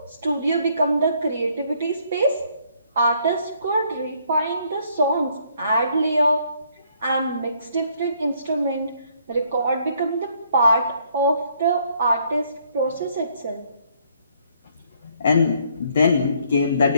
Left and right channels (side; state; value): both; inverted; correlation -0.67